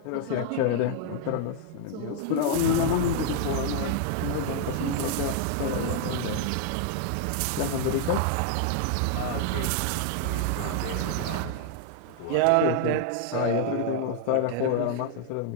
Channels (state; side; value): different; both; correlation 0.00